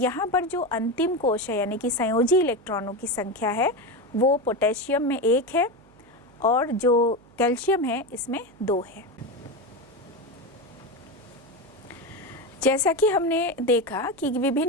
पर जो अंतिम कोश है यानी कि संयोजी इलेक्ट्रॉनों की संख्या है वो पोटेशियम में 1 है और जो कैल्शियम है इसमें 2 है। जैसा कि हमने देखा कि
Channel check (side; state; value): right; noise; hum, 27 dB below the sound